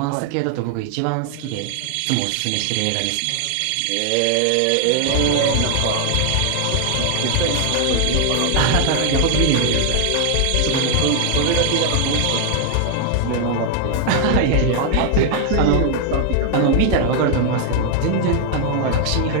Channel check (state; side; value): different; both; correlation 0.00